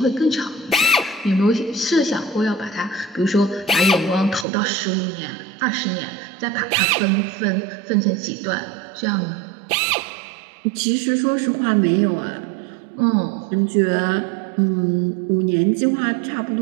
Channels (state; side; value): drops out; left; at 4.5 s